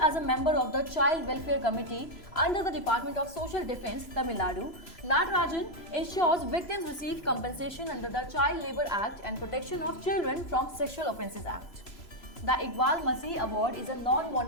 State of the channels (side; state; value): right; late; 3.0 ms